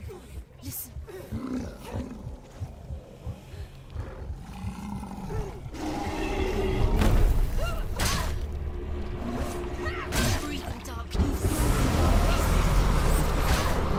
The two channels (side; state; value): both; identical; correlation 1.00